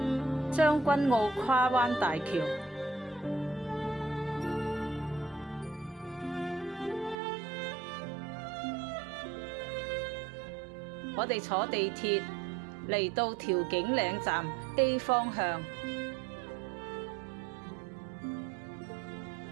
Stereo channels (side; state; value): left; drops out; at 7.2 s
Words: 將軍澳跨灣大橋。我哋坐地鐵嚟到調景嶺站 A 方向